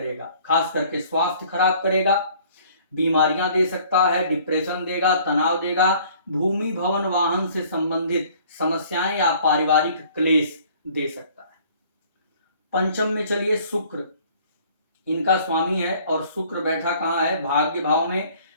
खास करके स्वास्थ्य खराब करेगा, बीमारियां दे सकता है, डिप्रेशन देगा, तनाव देगा, भूमि भवन वाहन से संबंधित समस्याएं या पारिवारिक क्लेश दे सकता है। पंचम में चलिए शुक्र इनका स्वामी है और शुक्र बैठा कहाँ है, भाग्य भाव में।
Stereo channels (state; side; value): inverted; both; correlation -0.55